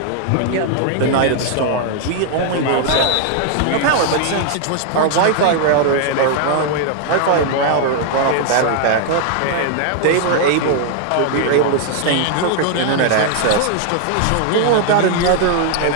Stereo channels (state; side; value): different; both; correlation 0.00